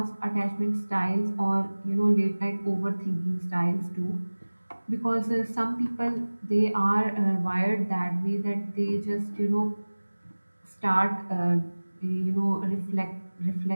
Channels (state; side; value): inverted; both; correlation -1.00